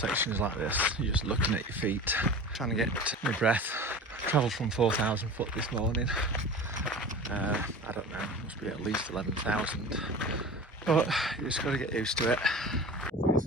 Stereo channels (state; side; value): normal; both; correlation 0.35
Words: like this, you're just looking at your feet, trying to get my breath. Travelled from 4,000 foot this morning. I don't know, must be at least 11,000. But you just got to get used to it.